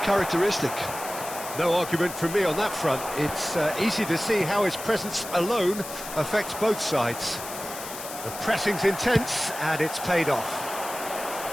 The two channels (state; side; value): noise; left; hiss, 10 dB below the sound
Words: characteristic. No argument from me on that front. It's easy to see how his presence alone affects both sides. The pressing's intense, and it's paid off.